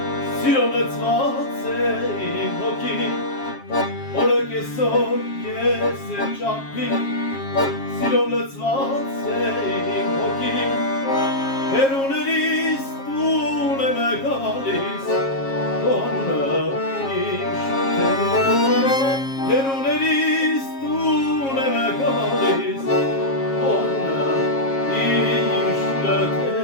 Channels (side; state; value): right; late; 7.4 ms